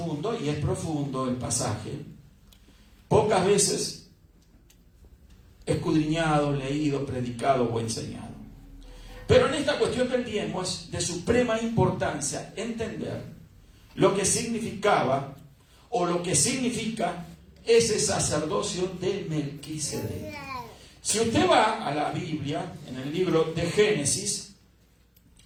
y es profundo el pasaje, pocas veces escudriñado, leído, predicado o enseñado. Pero en esta cuestión del diezmo es de suprema importancia entender lo que significaba o lo que significa ese sacerdocio de Melquisedec. Si usted va a la Biblia, en el libro de Génesis,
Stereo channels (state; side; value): identical; both; correlation 1.00